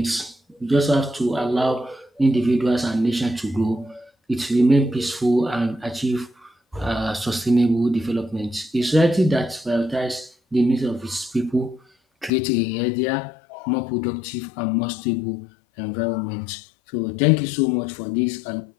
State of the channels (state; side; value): drops out; right; at 12.3 s